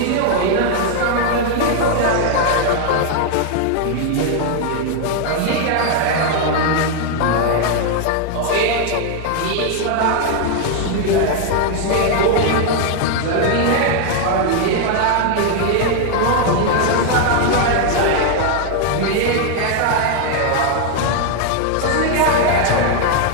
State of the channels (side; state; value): both; different; correlation 0.00